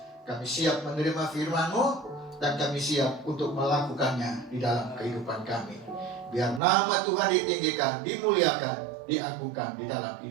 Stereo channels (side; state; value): left; drops out; at 6.6 s